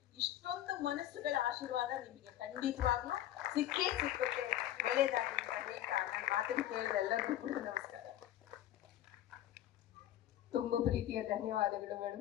ಇಷ್ಟೊಂದು ಮನಸ್ಸುಗಳ ಆಶೀರ್ವಾದ ನಿಮಗೆ ಖಂಡಿತವಾಗ್ಲೂ ಸಿಕ್ಕುತ್ತೆ. ಒಳ್ಳೇದಾಗಲಿ ಅಂತ ಹೇಳ್ತಾ ನನ್ನ ಮಾತನ್ನು ಕೇಳಿದ ಎಲ್ಲರಿಗೂ ಕೂಡ ನಮಸ್ಕಾರ. ತುಂಬಾ ಪ್ರೀತಿಯ ಧನ್ಯವಾದಗಳು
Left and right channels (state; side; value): quieter; right; 12.8 dB